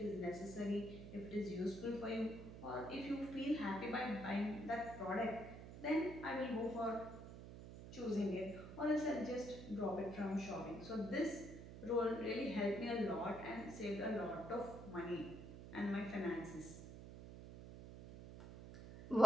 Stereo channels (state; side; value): noise; right; hum, 12 dB below the sound